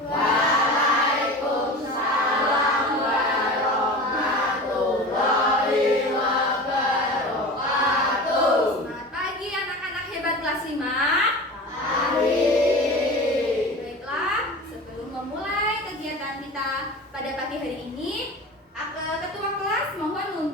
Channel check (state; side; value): normal; both; correlation 0.33